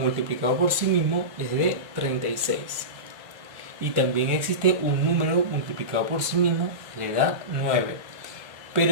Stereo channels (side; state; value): left; late; 1.4 ms